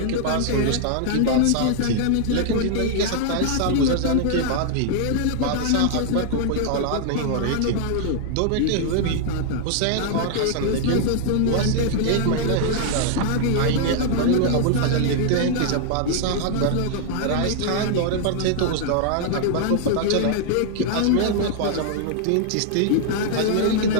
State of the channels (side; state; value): both; different; correlation -0.01